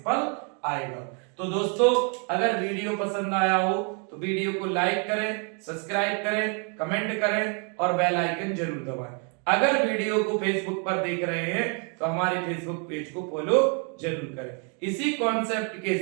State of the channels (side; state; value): left; quieter; 38.5 dB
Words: फल आएगा। तो दोस्तों अगर वीडियो पसंद आया हो तो वीडियो को लाइक करें, सब्सक्राइब करें, कमेंट करें और बेल आइकन जरूर दबाएं। अगर वीडियो को फेसबुक पर देख रहे हैं तो हमारे फेसबुक पेज को फॉलो जरूर करें। इसी कॉन्सेप्ट के